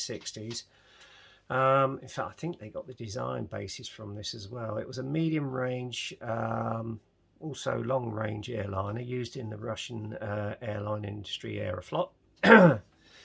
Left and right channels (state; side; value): identical; both; correlation 1.00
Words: In fact, I think they got the design basis from this as well. It was a medium range, also long range airliner used in the Russian airline industry, Aeroflot.